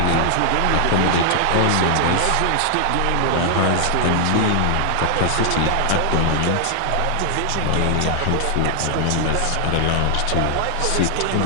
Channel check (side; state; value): both; different; correlation 0.00